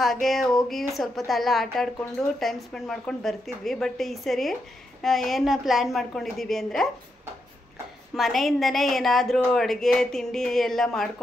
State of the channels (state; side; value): normal; both; correlation 0.83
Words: ಹಾಗೆ ಹೋಗಿ ಸ್ವಲ್ಪ ಹೊತ್ತು ಆಟ ಆಡಿಕೊಂಡು ಟೈಮ್ ಸ್ಪೆಂಡ್ ಮಾಡ್ಕೊಂಡು ಬರ್ತಿದ್ವಿ. ಬಟ್ ಈ ಸರಿ ಏನು ಪ್ಲ್ಯಾನ್ ಮಾಡ್ಕೊಂಡಿದ್ದೀವಿ ಅಂದರೆ, ಮನೆಯಿಂದನೇ ಏನಾದರೂ ಅಡುಗೆ ತಿಂಡಿ ಎಲ್ಲ